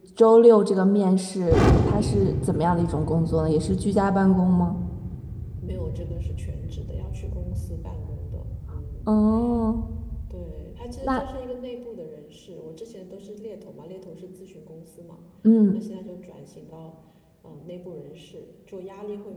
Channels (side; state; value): both; identical; correlation 1.00